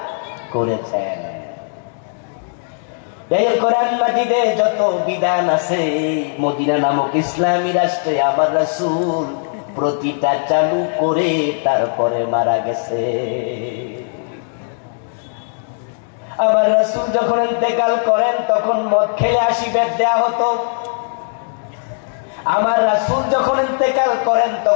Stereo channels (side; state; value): right; silent; digital silence